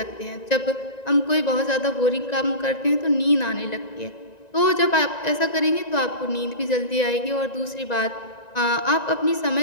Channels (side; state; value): right; late; 1.9 ms